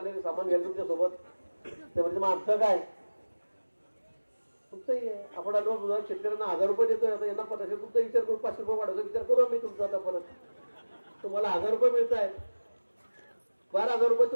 सामान घ्यायला तुमच्या सोबत ते म्हणजे मग आमचं काय तुमचंही आहे. आपण आलो शेतकऱ्यांना 1,000 रुपये देतोय आता यांना 500 तुमचा विचार करू 500 रुपये वाढवतो विचार करू आम्ही तुमचा आता परत तुम्हाला 1,000 रुपये मिळत आहेत 12,000 रुपये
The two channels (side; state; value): both; inverted; correlation -1.00